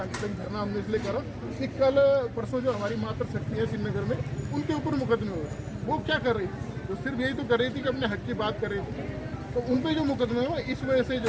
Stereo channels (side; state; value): both; identical; correlation 1.00